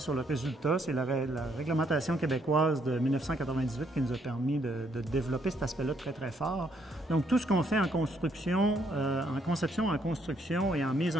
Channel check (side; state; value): both; normal; correlation 0.71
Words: le résultat. C'est la réglementation québécoise de 1998 qui nous a permis de développer cet aspect-là très, très fort. Donc, tout ce qu'on fait en construction, en conception, en construction et en mise